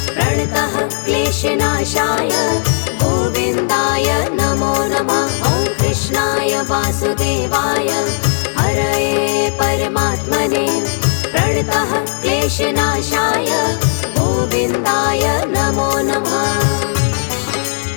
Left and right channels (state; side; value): silent; right; 68 dB below the other